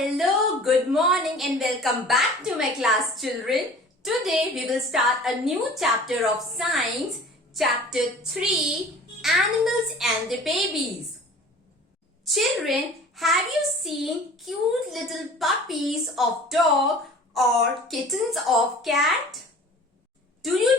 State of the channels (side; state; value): both; normal; correlation 0.44